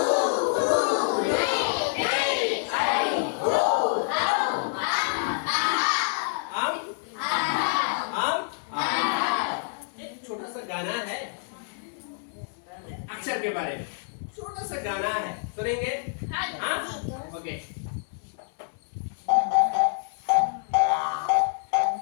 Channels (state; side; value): silent; right; digital silence